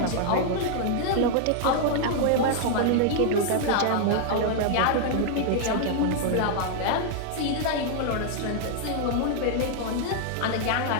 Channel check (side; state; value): both; different; correlation 0.00